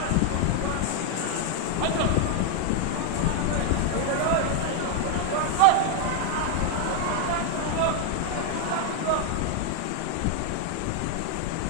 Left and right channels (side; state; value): both; different; correlation 0.00